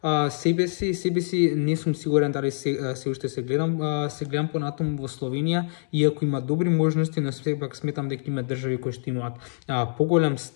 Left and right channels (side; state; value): right; silent; 62 dB below the other